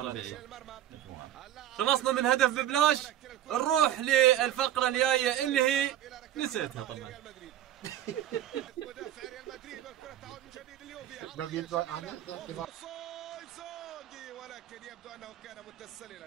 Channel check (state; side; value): quieter; left; 12.0 dB